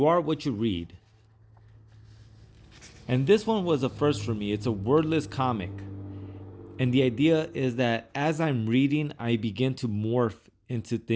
Are What You Read." And this one was a first for me. It's a wordless comic. And the idea is that as I'm reading, I begin to morph into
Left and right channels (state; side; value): identical; both; correlation 1.00